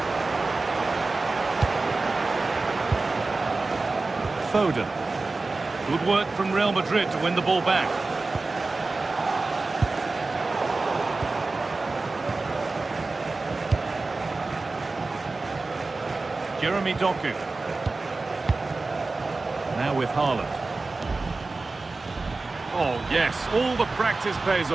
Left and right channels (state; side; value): quieter; left; 3.6 dB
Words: Foden. Good work from Real Madrid to win the ball back. Jeremy Doku. Now with Haaland. Oh yes, all the practice pays